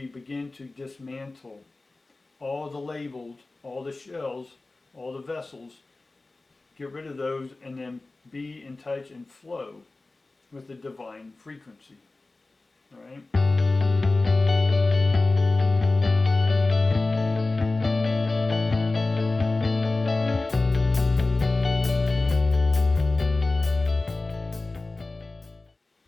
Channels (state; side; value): quieter; right; 3.2 dB